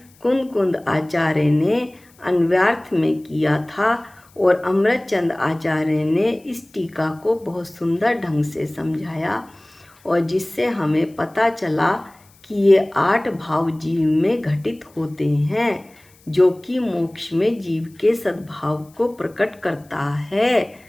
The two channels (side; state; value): left; noise; hiss, 30 dB below the sound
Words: कुंद आचार्य ने अन्वयार्थ में किया था और अमृतचंद आचार्य ने इस टीका को बहुत सुंदर ढंग से समझाया और जिससे हमें पता चला कि ये 8 भाव जीव में घटित होते हैं जो कि मोक्ष में जीव के सद्भाव को प्रकट करता है।